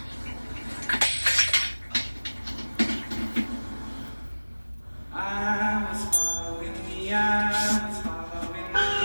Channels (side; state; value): both; inverted; correlation -1.00